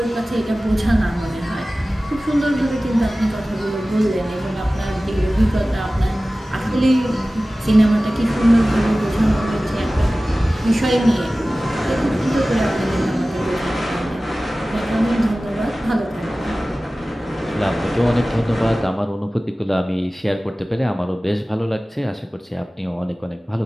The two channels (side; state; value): both; normal; correlation 0.97